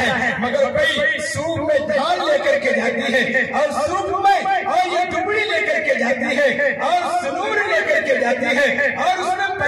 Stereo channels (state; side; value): identical; both; correlation 1.00